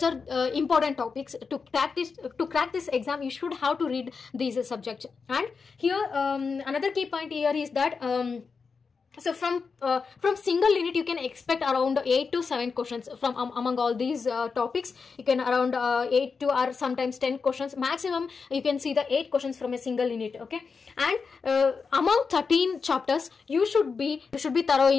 are important topics. To crack this exam, you should have to read these subjects. And here another key point here is that so from single unit, you can expect around 8 to 7 questions from among all these topics. You can around 8 to or sometimes 10 questions maximum. You can see the 8 questions from a single unit. Okay, and among 13 chapters, you should be thorough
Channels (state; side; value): quieter; right; 5.1 dB